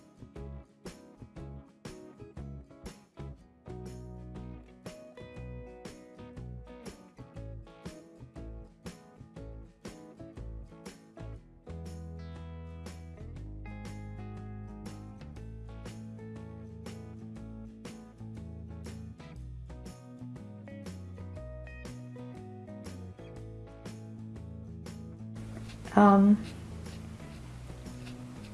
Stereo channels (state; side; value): identical; both; correlation 1.00